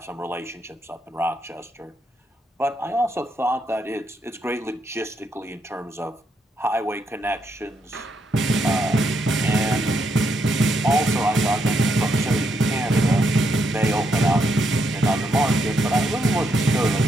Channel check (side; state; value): both; normal; correlation 0.78